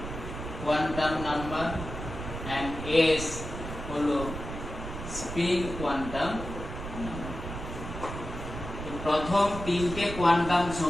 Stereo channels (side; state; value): right; noise; rumble, 8 dB below the sound